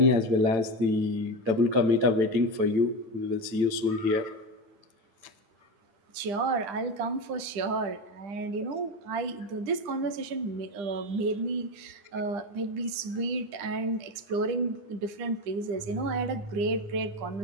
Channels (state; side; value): late; left; 10 ms